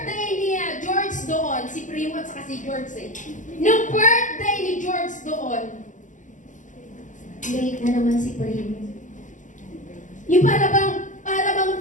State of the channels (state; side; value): late; right; 0.37 ms